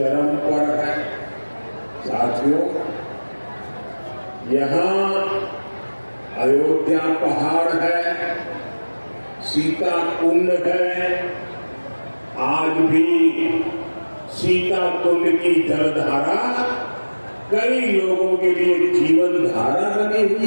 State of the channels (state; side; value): inverted; both; correlation -1.00